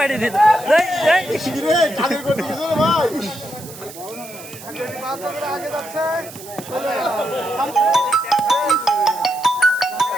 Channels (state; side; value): noise; right; hiss, 16 dB below the sound